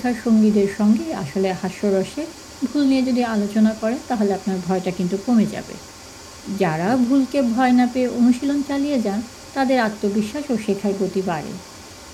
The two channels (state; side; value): identical; both; correlation 1.00